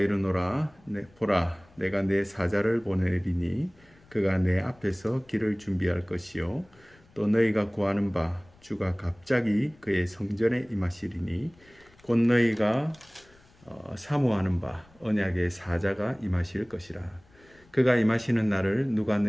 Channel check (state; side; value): noise; left; rumble, 29 dB below the sound